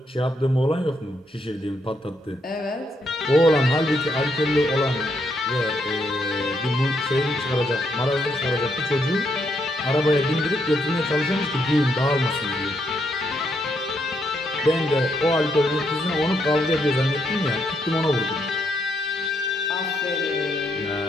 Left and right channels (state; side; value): normal; both; correlation 0.76